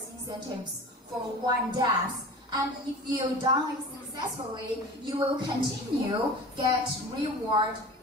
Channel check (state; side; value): normal; both; correlation 0.37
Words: incentives for one dApp. And if you done it successfully, you will continue get reward